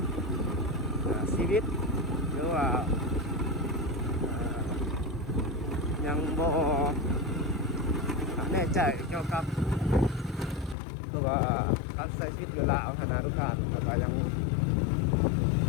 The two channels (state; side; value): drops out; right; at 10.8 s